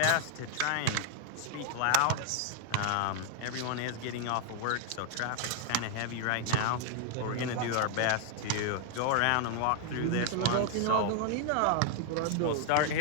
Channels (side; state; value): both; different; correlation 0.00